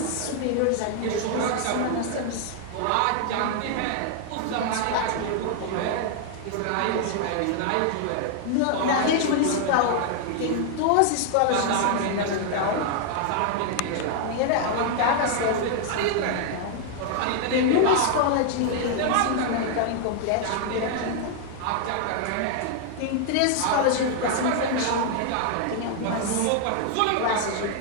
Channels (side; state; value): both; different; correlation 0.00